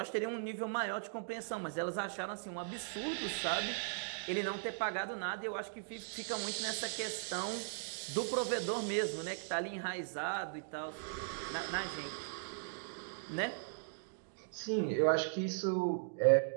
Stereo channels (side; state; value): left; silent; digital silence